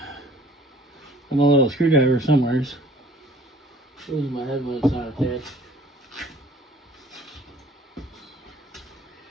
a little screwdriver somewhere. Losing my head when it's not attached.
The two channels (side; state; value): both; normal; correlation 0.53